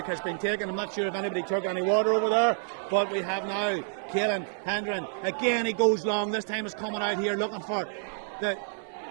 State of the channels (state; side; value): silent; left; 56 dB below the other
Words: has been taken. I'm not sure if anybody took any water over there, but we have now Caelan Hendren. Again, he goes long. This time is coming out here looking for the...